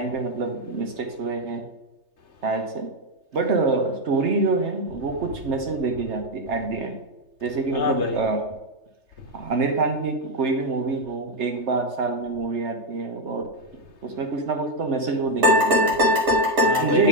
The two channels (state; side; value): late; left; 3.3 ms